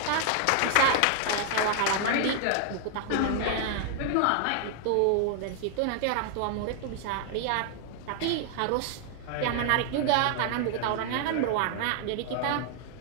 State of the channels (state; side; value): different; both; correlation 0.00